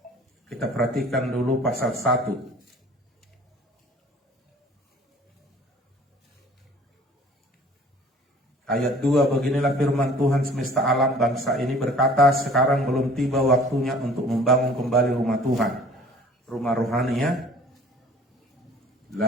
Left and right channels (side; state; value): both; normal; correlation 0.50